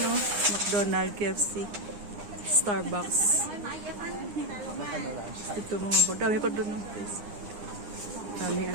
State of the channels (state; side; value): late; left; 9.8 ms